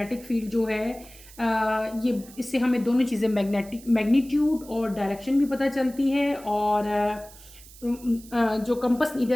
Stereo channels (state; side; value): noise; right; hiss, 20 dB below the sound